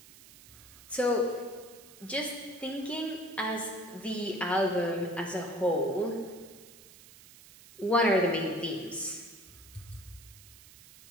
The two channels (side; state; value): right; noise; hiss, 20 dB below the sound